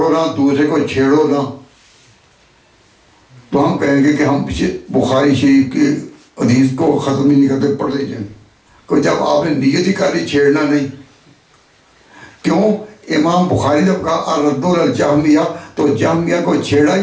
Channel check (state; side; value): identical; both; correlation 1.00